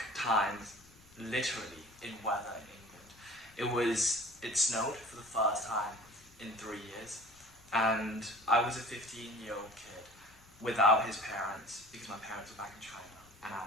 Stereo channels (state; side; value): noise; left; rumble, 26 dB below the sound